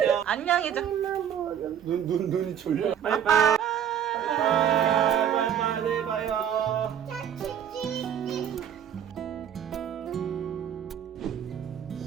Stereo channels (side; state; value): left; quieter; 9.1 dB